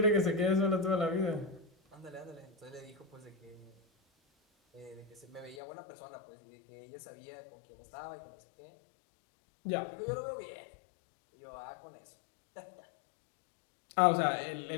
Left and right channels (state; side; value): drops out; right; at 5.6 s